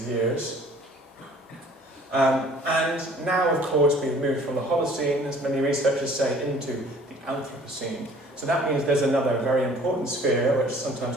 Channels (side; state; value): both; normal; correlation 0.52